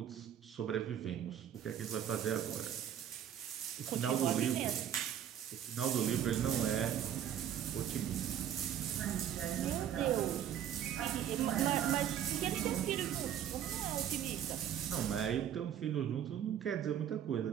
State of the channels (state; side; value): quieter; left; 9.9 dB